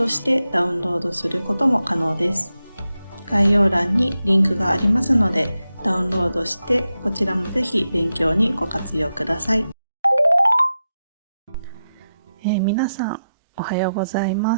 してダウンロードすることも可能です。概要欄にリンクがありますので、ダウンロードしてこちらもぜひ勉強にご活用ください。皆さんおはようございま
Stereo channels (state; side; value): inverted; both; correlation -0.90